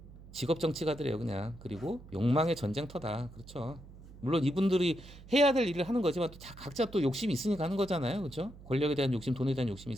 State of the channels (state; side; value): noise; right; hum, 18 dB below the sound